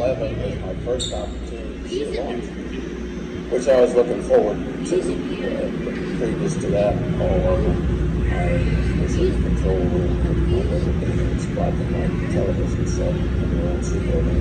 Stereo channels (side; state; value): both; identical; correlation 1.00